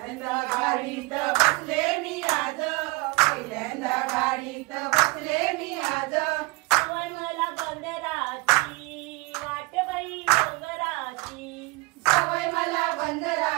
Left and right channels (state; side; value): quieter; left; 25.4 dB